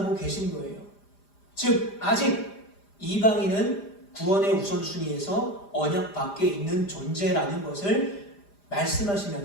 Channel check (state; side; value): late; right; 5.0 ms